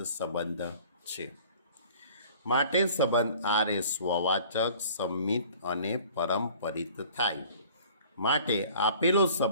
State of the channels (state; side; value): inverted; both; correlation -0.49